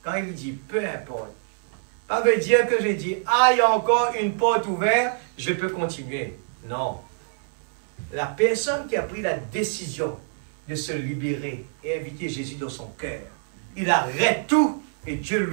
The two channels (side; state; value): left; silent; 62 dB below the other